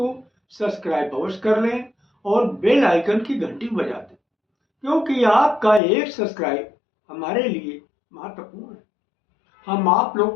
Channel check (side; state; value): right; drops out; at 5.8 s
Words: सब्सक्राइब अवश्य कर लें और बेल आइकन की घंटी बजा दें, क्योंकि आपका एक सब्सक्राइब हमारे लिए महत्वपूर्ण है। हम आप लोग